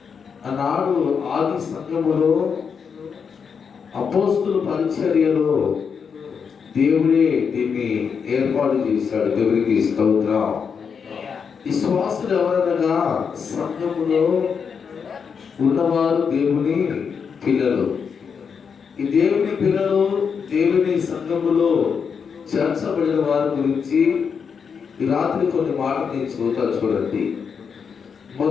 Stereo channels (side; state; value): right; quieter; 6.4 dB